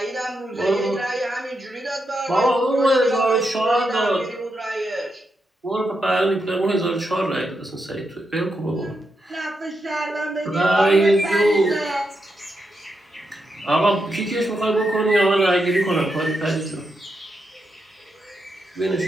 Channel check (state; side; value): normal; both; correlation 0.84